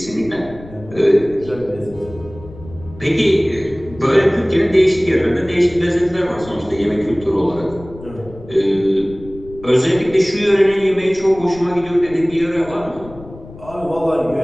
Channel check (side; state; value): left; noise; rumble, 18 dB below the sound